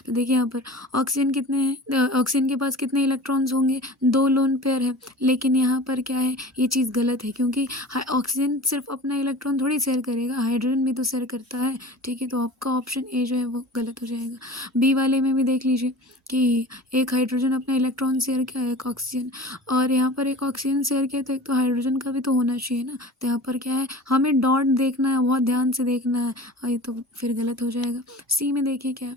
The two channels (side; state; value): both; normal; correlation 0.38